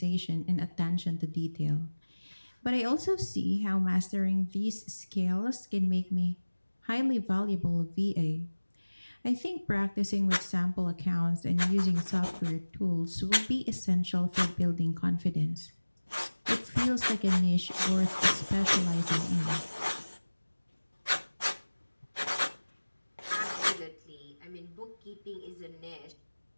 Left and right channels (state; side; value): inverted; both; correlation -1.00